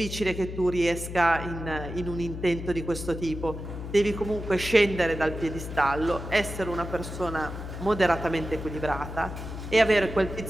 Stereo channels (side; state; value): left; noise; hum, 8 dB below the sound